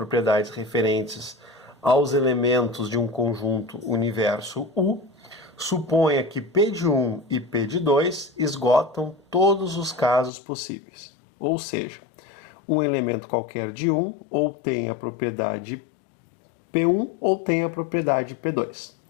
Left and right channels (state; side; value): drops out; right; at 10.3 s